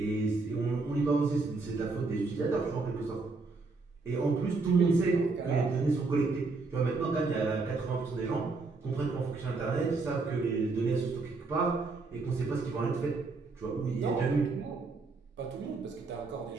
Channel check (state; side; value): quieter; left; 3.9 dB